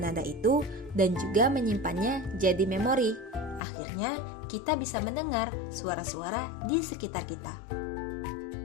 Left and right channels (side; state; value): right; drops out; at 3.6 s